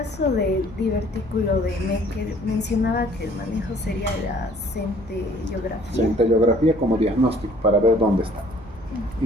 del divertículo de Meckel, mencionaba que el manejo sería la centellografía. Centellografía como diagnóstico para ver dónde está.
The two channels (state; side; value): normal; both; correlation 0.55